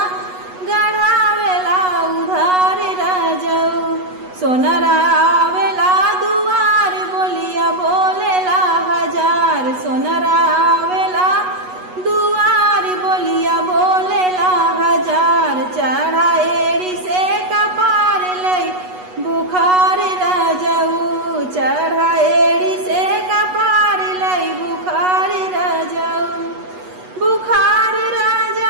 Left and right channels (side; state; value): left; late; 8.2 ms